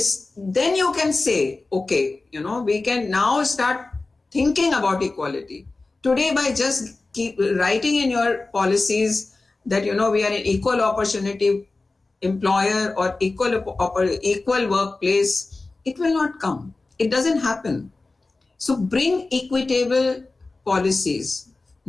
you can say, okay, we can now start thinking about equality. Today, by just keep writing in your policies that, we are an equal opportunity employer or equal workplace, it will not come. It doesn't happen. So bring equitable policies,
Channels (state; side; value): quieter; right; 3.4 dB